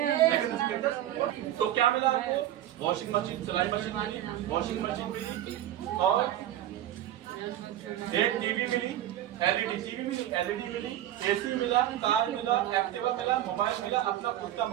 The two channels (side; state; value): left; quieter; 12.6 dB